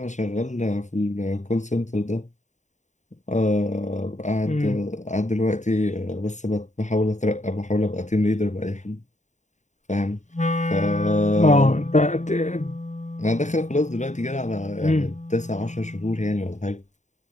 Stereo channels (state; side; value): late; right; 0.34 ms